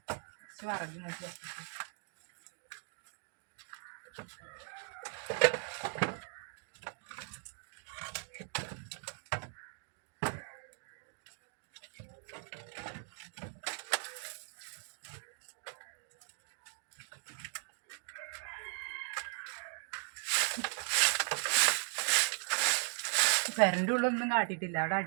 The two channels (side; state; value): left; silent; 52 dB below the other